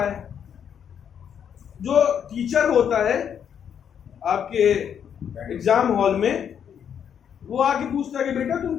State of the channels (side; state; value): right; quieter; 8.3 dB